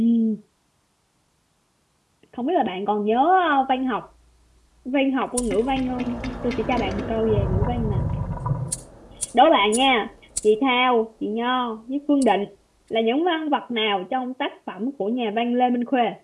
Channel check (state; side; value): identical; both; correlation 1.00